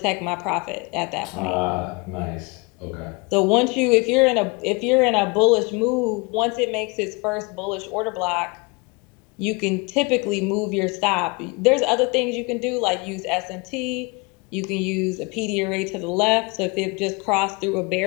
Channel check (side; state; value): right; quieter; 28.0 dB